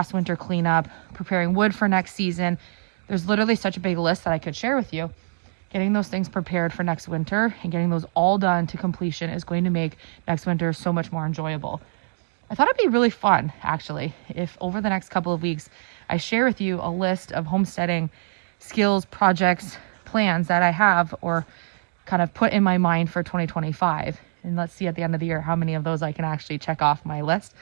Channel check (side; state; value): left; quieter; 39.9 dB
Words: winter cleanup, preparing wood for next season. There's literally such a big list that I could share with you. Getting those things prepared for next winter and getting those all done to completion is going to make next winter so much more enjoyable. I thought it'd be really fun, actually, if over the next couple of weeks, I share with you a list of homesteading skills, projects, plans that I have or kind of put in my mind for 2025. And let's see at the end of the year how many of those I can actually check off my list.